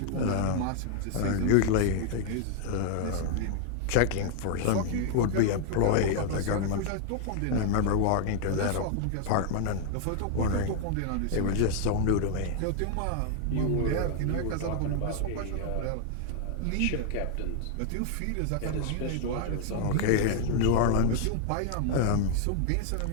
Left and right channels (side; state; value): both; different; correlation 0.00